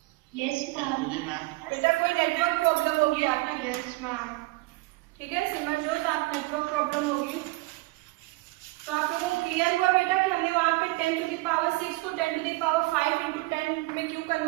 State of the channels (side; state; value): left; quieter; 22.8 dB